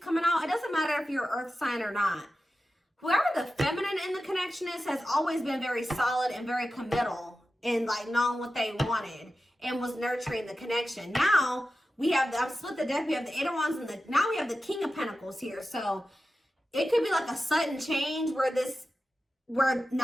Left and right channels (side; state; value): both; normal; correlation 0.93